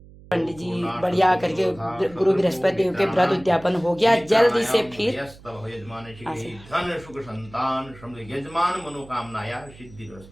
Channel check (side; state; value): right; noise; hum, 21 dB below the sound